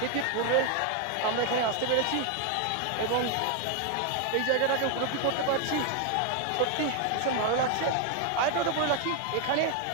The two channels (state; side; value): different; both; correlation 0.01